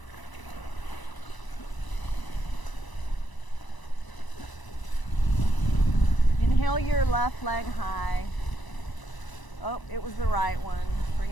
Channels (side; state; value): right; late; 1.0 ms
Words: Inhale your left leg high. Oh, it was the right one. Bring